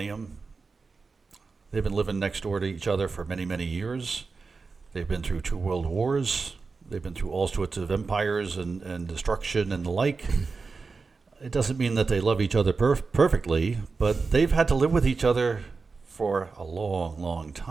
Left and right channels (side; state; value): left; quieter; 4.4 dB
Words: They've been living next door to each other for many, many years. They've been through 2 world wars. They've been through all sorts of empires and destruction and the like. It doesn't mean that they love each other perfectly, but they've had to live with each other for a long, long